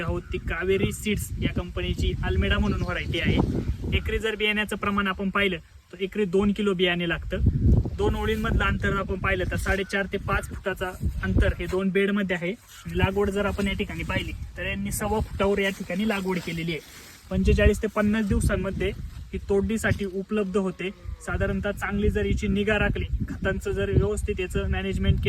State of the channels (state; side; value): identical; both; correlation 1.00